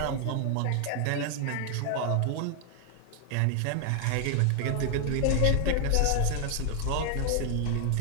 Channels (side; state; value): both; different; correlation 0.00